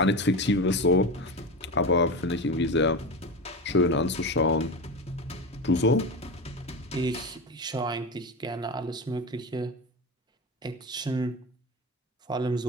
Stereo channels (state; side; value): normal; both; correlation 0.22